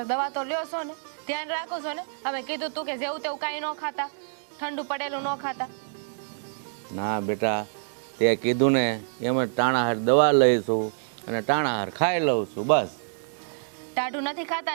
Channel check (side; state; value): left; silent; digital silence